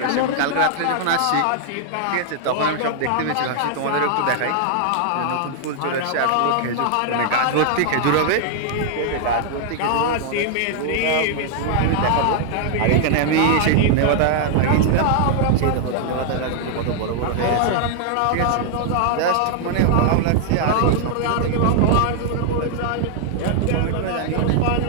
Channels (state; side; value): different; both; correlation 0.00